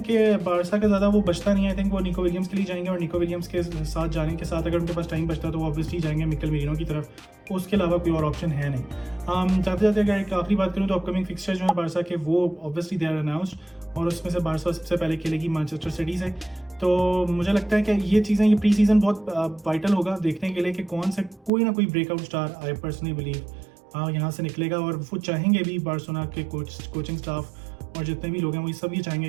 कि बारसा का ज़्यादा वो बचता नहीं है। आई थिंक वो निको विलियम्स के लिए जाएंगे, और निको विलियम्स के साथ जाने के साथ अगर उनके पास टाइम बचता है तो वो ऑब्वियसली जाएंगे मिकेल मेरिनो की तरफ, उसके अलावा कोई और ऑप्शन है नहीं। जाते जाते अगर एक आखिरी बात करूँ तो अपकमिंग फिक्सचर जो है बारसा के वो ऑब्वियसली दे आर अनाउंस्ड, और उसमें से बारसा सबसे पहले खेलेगी मैनचेस्टर सिटी से। तो मुझे लगता है कि ये चीज़ें, ये प्री सीज़न बहुत वाइटल होगा देखने के लिए कि कौन से कोई ना कोई breakout star I personally believe यहाँ से निकलेगा, और वो चाहेंगे भी बार्सिलोना के कोचिंग स्टाफ और जितने भी लोग हैं वो सब ये चाहेंगे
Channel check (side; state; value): left; drops out; at 21.5 s